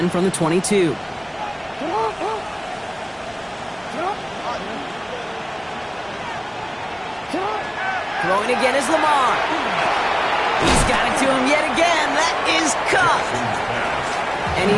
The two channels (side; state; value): both; identical; correlation 1.00